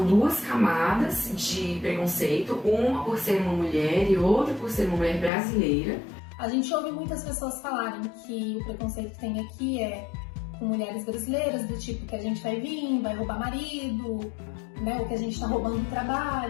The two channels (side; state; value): right; drops out; at 5.3 s